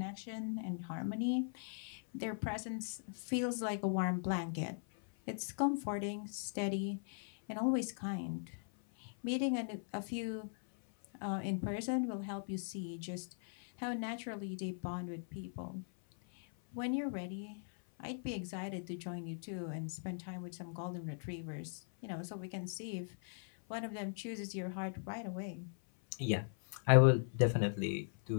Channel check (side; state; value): right; silent; 51 dB below the other